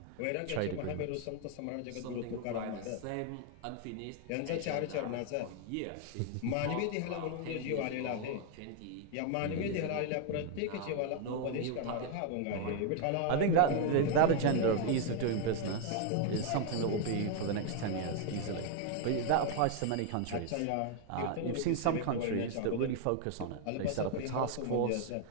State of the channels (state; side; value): different; both; correlation 0.00